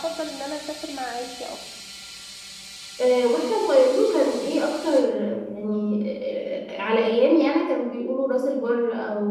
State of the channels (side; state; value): both; identical; correlation 1.00